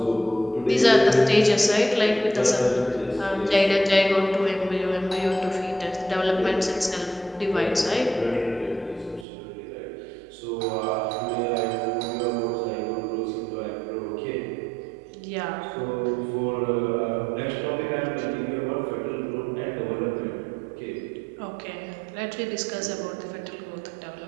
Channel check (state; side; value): drops out; left; at 9.2 s